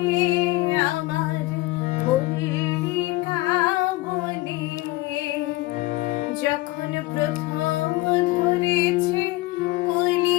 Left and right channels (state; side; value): quieter; right; 19.6 dB